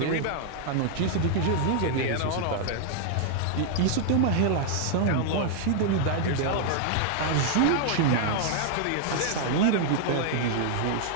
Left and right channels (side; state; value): both; different; correlation 0.00